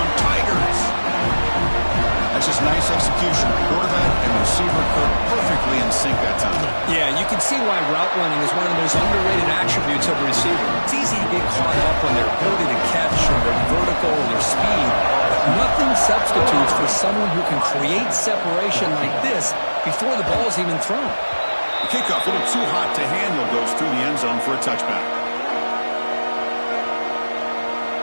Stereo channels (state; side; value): inverted; both; correlation -1.00